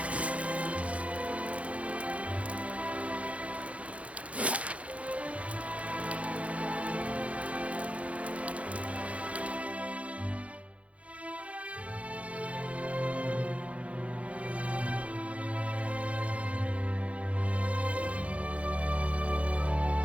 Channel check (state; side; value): late; left; 0.064 ms